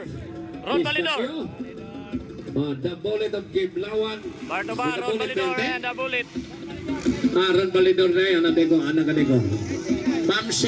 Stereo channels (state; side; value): identical; both; correlation 1.00